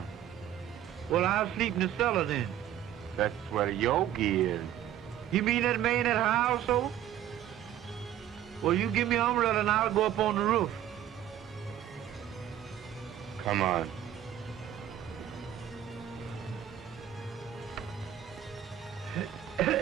Well, I'll sleep in the cellar then. That's where Yogi is. You mean that man at her household? Well, you give me an umbrella and I'll go up on the roof. Come on.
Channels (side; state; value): left; quieter; 11.2 dB